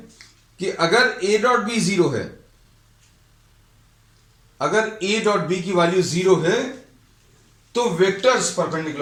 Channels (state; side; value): identical; both; correlation 1.00